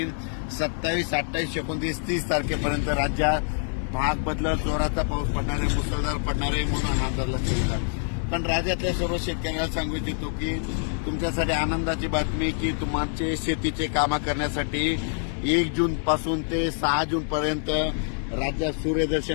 27, 28, 29, 30 तारखेपर्यंत राज्यात भाग बदलत जोराचा पाऊस पडणार आहे, मुसळधार पडणार आहे म्हणून अंदाज लक्षात. पण राज्यातल्या सर्व शेतकऱ्याला सांगू इच्छितो की तुमच्यासाठी आनंदाची बातमी की तुमचे शेतीचे कामं करण्यासाठी 1 जून पासून ते 6 जून पर्यंत राज्यात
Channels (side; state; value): right; silent; 61 dB below the other